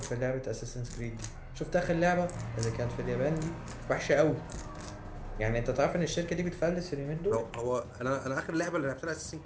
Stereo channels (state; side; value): identical; both; correlation 1.00